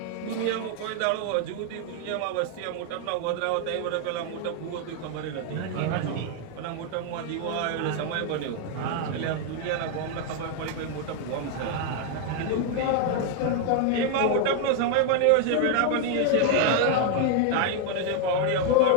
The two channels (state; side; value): different; both; correlation 0.00